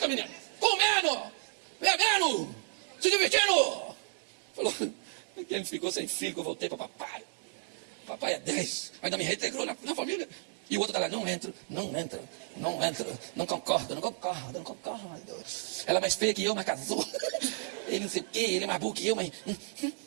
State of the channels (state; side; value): silent; left; digital silence